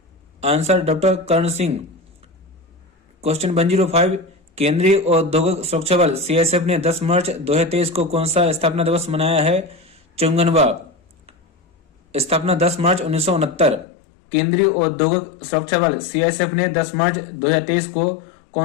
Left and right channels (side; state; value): right; drops out; at 13.9 s